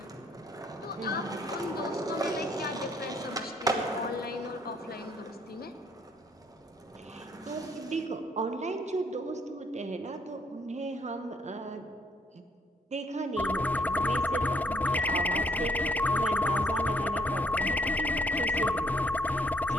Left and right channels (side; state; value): both; normal; correlation 0.67